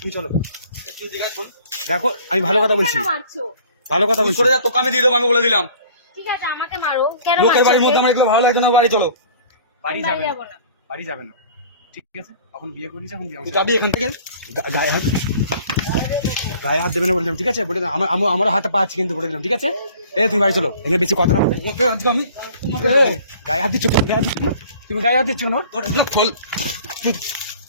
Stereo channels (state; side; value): inverted; both; correlation -0.50